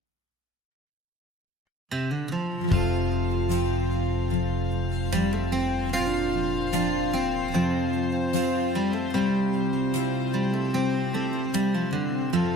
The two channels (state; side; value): normal; both; correlation 0.53